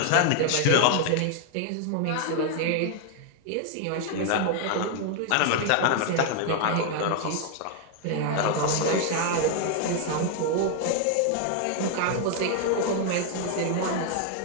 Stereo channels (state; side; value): different; both; correlation 0.00